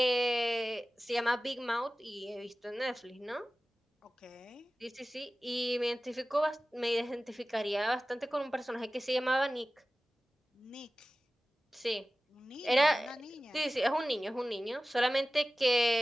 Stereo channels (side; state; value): both; normal; correlation 0.96